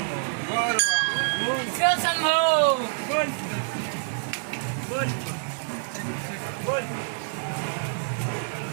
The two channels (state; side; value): silent; left; digital silence